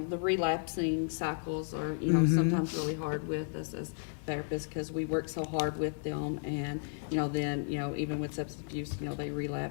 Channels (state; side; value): silent; right; digital silence